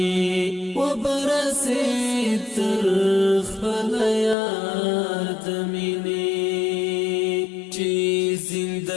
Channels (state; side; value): drops out; right; at 4.4 s